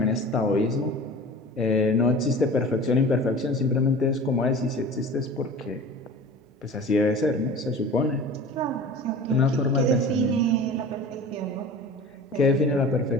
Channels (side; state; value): both; normal; correlation 0.39